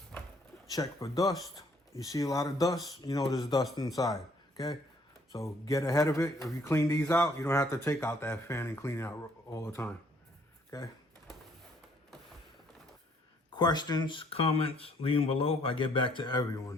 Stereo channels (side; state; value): both; normal; correlation 0.64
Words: Check for dust. You see a lot of dust, you know there's dust inside, okay? So get ahead of it. If you clean these out, you don't have to take out that fan and clean it out all the time, okay? Questions, comments, leave them below. I get back to